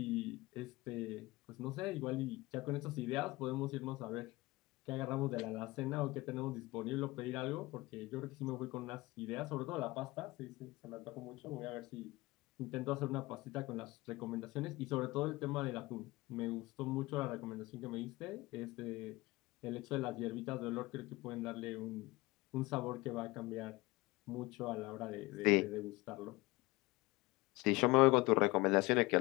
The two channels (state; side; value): quieter; right; 21.6 dB